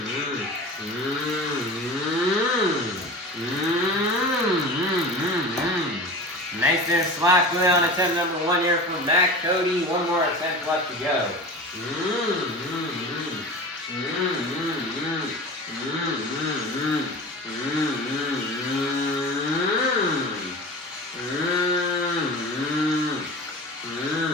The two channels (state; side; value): normal; both; correlation 0.33